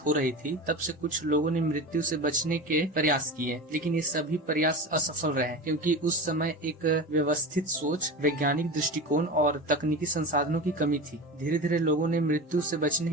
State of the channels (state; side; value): normal; both; correlation 0.28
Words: हो रही थी, तब से कुछ लोगों ने मृत्यु से बचने के प्रयास किए, लेकिन ये सभी प्रयास असफल रहे, क्योंकि उस समय एक व्यवस्थित सोच, वैज्ञानिक दृष्टिकोण और तकनीकी संसाधनों की कमी थी। धीरे धीरे लोगों ने मृत्यु से बचने